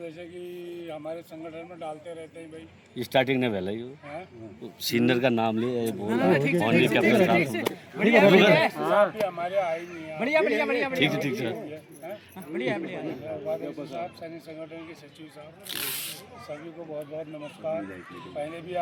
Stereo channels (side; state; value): both; identical; correlation 1.00